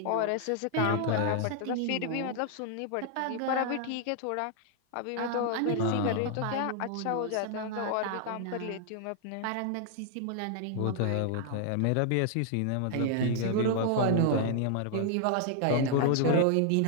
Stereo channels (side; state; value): both; different; correlation 0.00